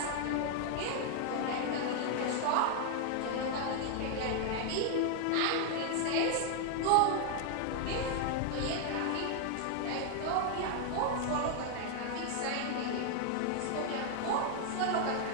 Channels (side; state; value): both; different; correlation 0.00